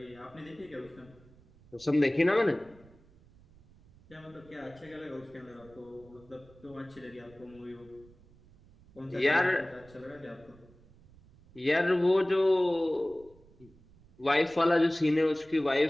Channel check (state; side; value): noise; right; rumble, 26 dB below the sound